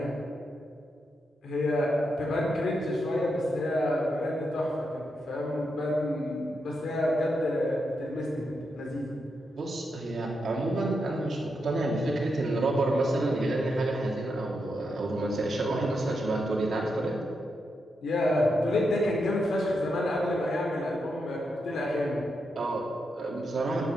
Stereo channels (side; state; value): both; normal; correlation 0.84